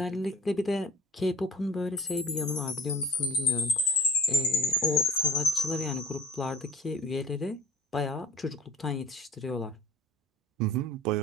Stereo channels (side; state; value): both; normal; correlation 0.42